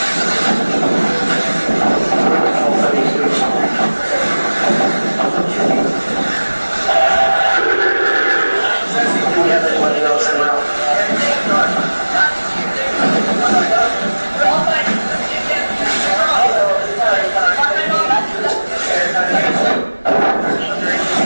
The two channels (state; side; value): inverted; both; correlation -1.00